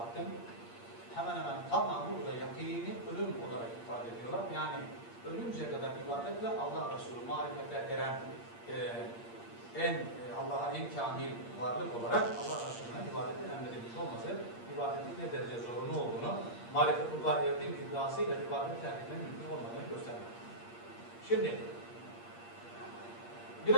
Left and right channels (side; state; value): right; late; 8.6 ms